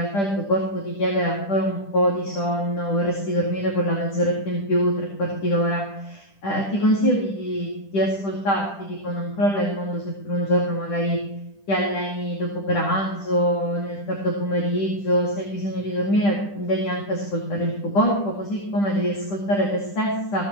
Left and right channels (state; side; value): late; right; 10 ms